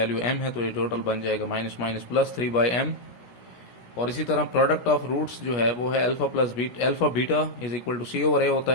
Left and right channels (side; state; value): right; late; 16 ms